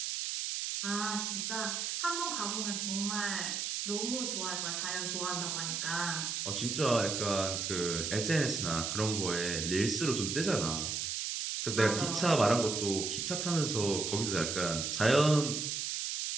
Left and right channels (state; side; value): noise; right; hiss, 2 dB below the sound